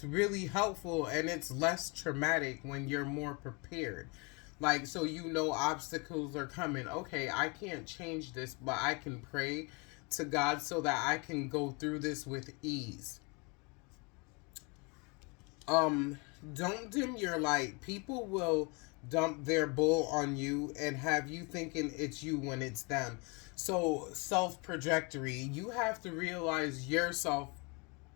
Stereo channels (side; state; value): right; quieter; 30.6 dB